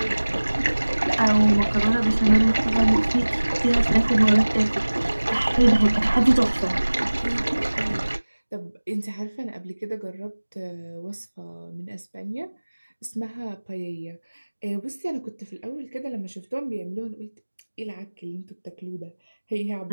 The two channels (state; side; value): inverted; both; correlation -1.00